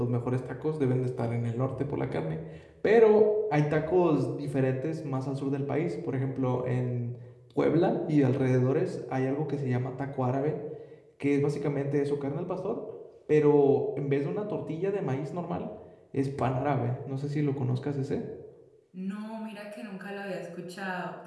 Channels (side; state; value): both; identical; correlation 1.00